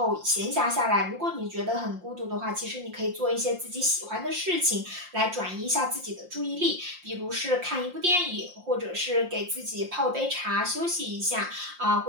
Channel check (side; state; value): left; late; 5.7 ms